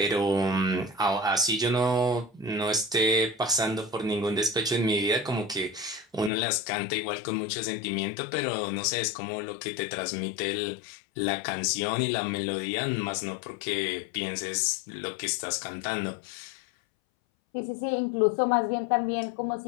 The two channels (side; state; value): right; drops out; at 6.3 s